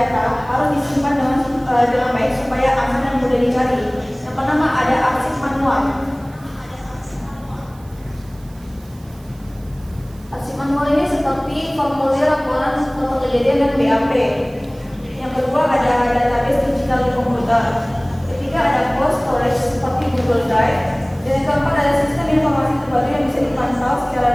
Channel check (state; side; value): noise; right; hiss, 27 dB below the sound